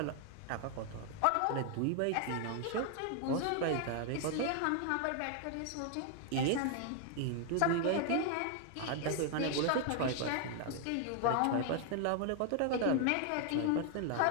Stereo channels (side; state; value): both; different; correlation 0.00